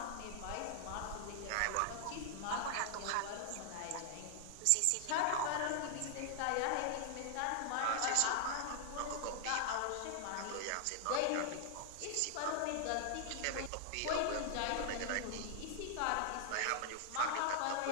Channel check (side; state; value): both; different; correlation 0.00